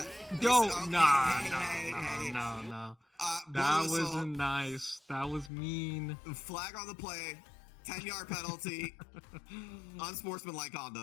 Don't. No. That wasn't nice. That was mean. Flag on the play. 10-yard penalty. Unsportsmanlike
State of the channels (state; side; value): drops out; right; at 5.5 s